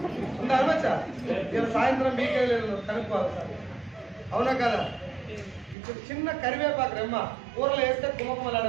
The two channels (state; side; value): drops out; left; at 5.8 s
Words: ఉందా అనవచ్చా? ఇలా సాయంత్రం మీకే లేదు కనుక్కోవాలి సార్, అవునా కదా? ఇప్పుడు చిన్న కరివేపాకు రెమ్మ కూరలు వేస్తే